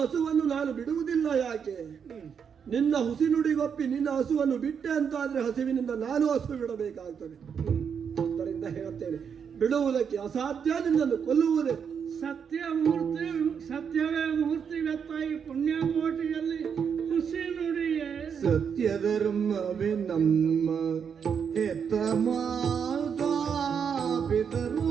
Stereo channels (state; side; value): quieter; left; 7.1 dB